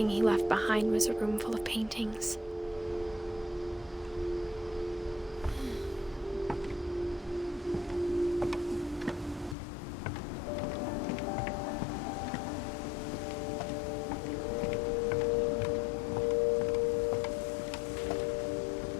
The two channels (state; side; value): drops out; right; at 9.6 s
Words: he left behind was a room full of paintings.